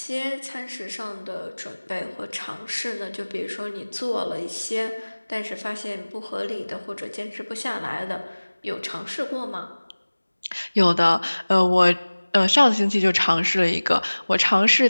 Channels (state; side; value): inverted; both; correlation -1.00